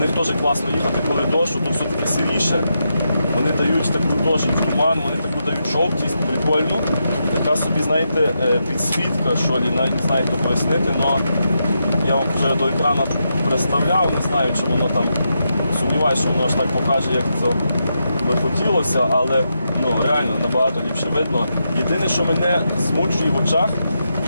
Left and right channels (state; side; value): inverted; both; correlation -0.84